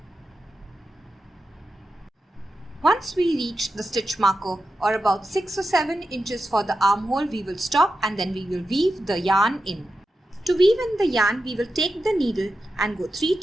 Once we reach the stitch marker or about 6 or 7 inches for the armhole, we will stop and then we will weave the yarn in. To weave in the yarn, we will take the needle and go 3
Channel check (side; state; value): both; normal; correlation 0.90